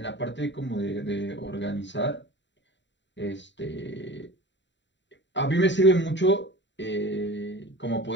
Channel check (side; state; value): right; late; 0.53 ms